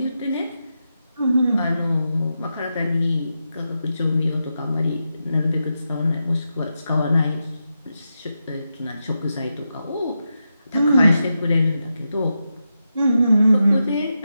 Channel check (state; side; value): inverted; both; correlation -0.88